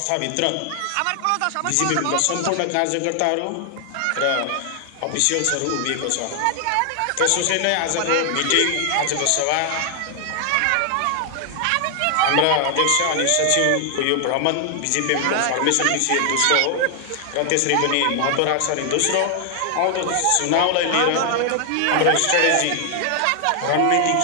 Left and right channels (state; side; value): different; both; correlation 0.00